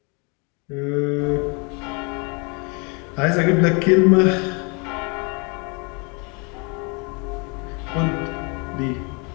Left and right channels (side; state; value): right; quieter; 32.5 dB